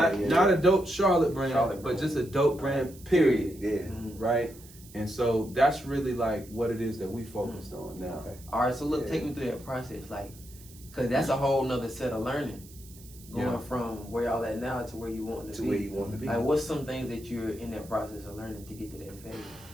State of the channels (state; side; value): noise; right; hiss, 21 dB below the sound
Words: a dope Charlotte brand, but just a dope brand, period. Right? And so that's really like what it is that we focused on now. All right, so look, take me through that process, like, cause that's a whole nother set of learning, going from where y'all at now to where you want to be. Where you want to be. Like, what's some things that you're in that process of learning to get to that phase?